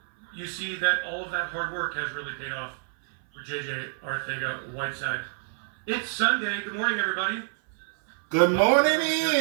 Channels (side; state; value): left; silent; 56 dB below the other